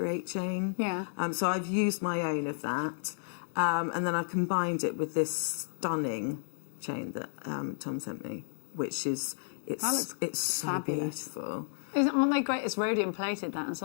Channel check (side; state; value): right; silent; digital silence